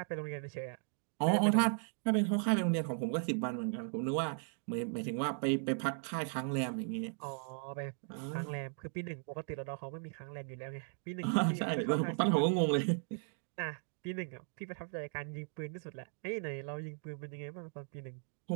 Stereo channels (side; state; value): left; silent; 53 dB below the other